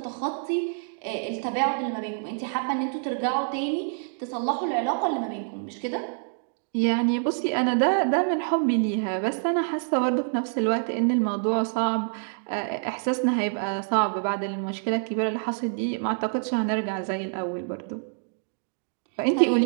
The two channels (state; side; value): silent; left; digital silence